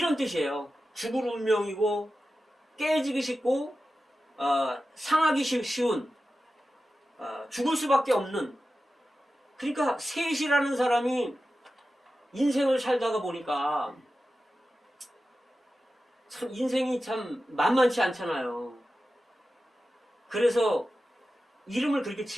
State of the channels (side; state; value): both; normal; correlation 0.93